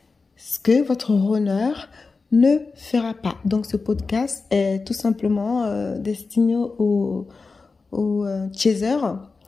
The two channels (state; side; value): quieter; right; 4.2 dB